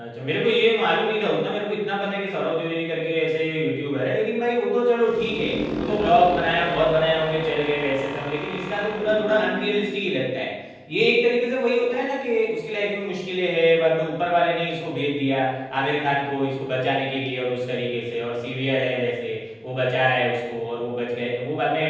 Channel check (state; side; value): identical; both; correlation 1.00